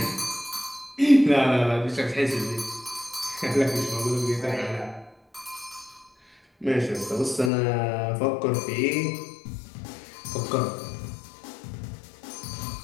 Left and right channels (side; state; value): right; drops out; at 7.5 s